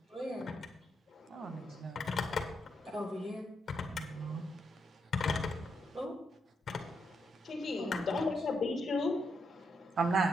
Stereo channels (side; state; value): both; normal; correlation 0.80